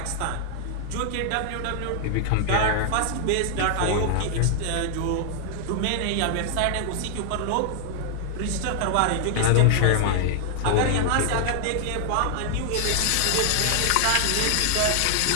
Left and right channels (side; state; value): both; different; correlation -0.01